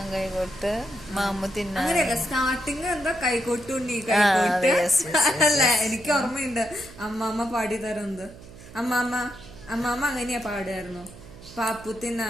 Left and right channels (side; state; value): right; noise; hum, 18 dB below the sound